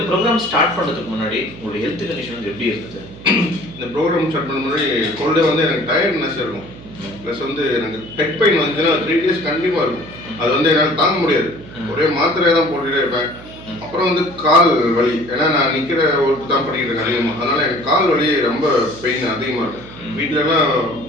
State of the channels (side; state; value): right; noise; hum, 17 dB below the sound